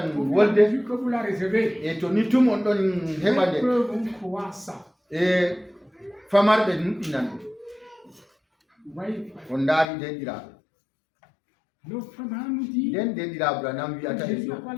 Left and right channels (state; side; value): drops out; right; at 9.9 s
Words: au fur et à wolde mesure que vous la recevez, e to ni tum on ɗon heɓa dès nde que vous croyez ça, e famarɓe nuɗɗinan ɗum vous voyez, on ndaari denɗiraɓe le frère nous dit nden denɗiraɓe anam que wiyata Jésus yo